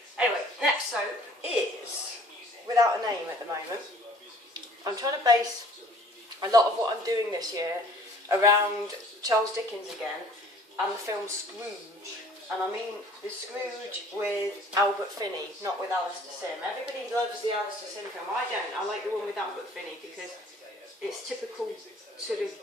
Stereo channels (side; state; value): both; normal; correlation 0.53